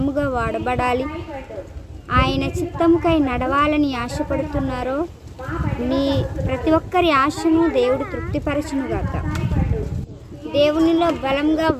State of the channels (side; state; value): both; identical; correlation 1.00